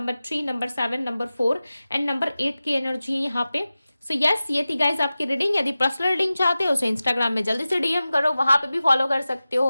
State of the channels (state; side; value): inverted; both; correlation -0.96